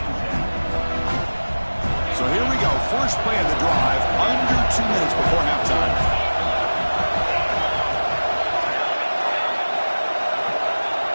So here we go. First play of the drive, under 2 minutes before halftime.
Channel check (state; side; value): inverted; both; correlation -1.00